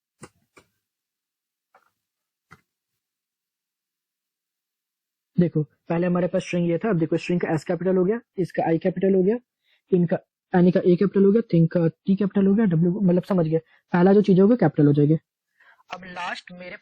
देखो पहले हमारे पास स्ट्रिंग ये था, अब देखो स्ट्रिंग का एस कैपिटल हो गया, इसका आई कैपिटल हो गया, इनका एनी का ए कैपिटल हो गया, थिंग का टी कैपिटल हो गया, डब्ल्यू मतलब समझ गया, पहला जो चीज होगा कैपिटल हो जाएगी। अब लास्ट मेरे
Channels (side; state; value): both; identical; correlation 1.00